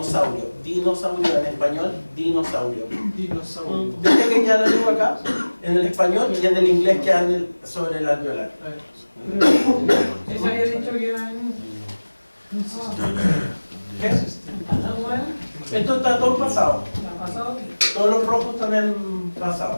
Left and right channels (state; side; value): inverted; both; correlation -1.00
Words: Dinosaurio en español, dinosaurio. Dinosaurio. ¿Viste que queda la lengua acá? En el español y en el inglés queda sobre el alveolar. Eso había dicho que era en... ¿Qué? Esto está todo en pasado. ¿La pasado? Todos los rojos están en